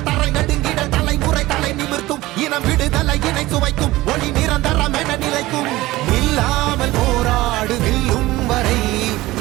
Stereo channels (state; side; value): quieter; left; 18.2 dB